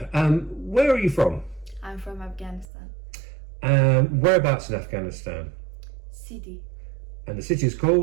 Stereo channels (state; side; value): drops out; left; at 2.7 s